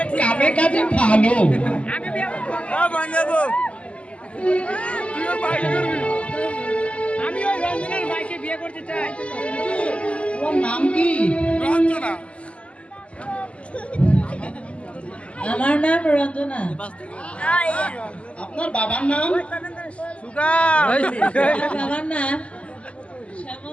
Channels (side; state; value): right; late; 0.060 ms